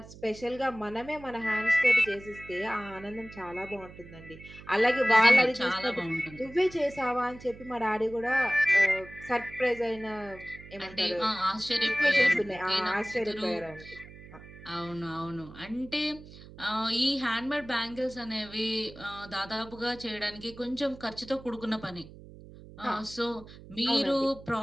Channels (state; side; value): noise; right; hum, 18 dB below the sound